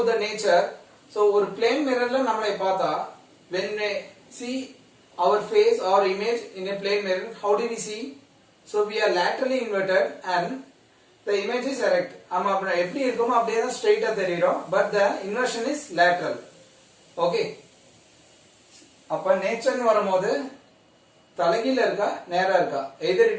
the nature, so ஒரு plane mirror ல நம்மளை பார்த்தா when we see our face or image in a plane mirror, how do we see? So we are laterally inverted and the image is erect. நம்ம அப்ப எப்படி இருக்குமோ அப்படியே தான் ஸ்ட்ரைட்டா தெரியும், but the inversion is lateral. Okay, அப்ப nature வரும்போது தலைகீழ இருக்கா நேரா இருக்கா, either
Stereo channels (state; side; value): identical; both; correlation 1.00